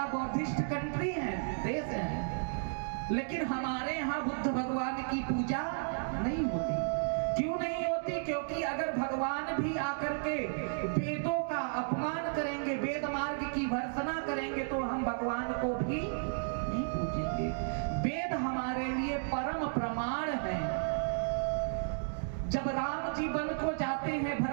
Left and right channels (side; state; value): left; silent; digital silence